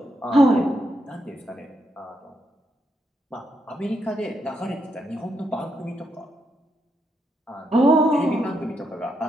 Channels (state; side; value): normal; both; correlation 0.80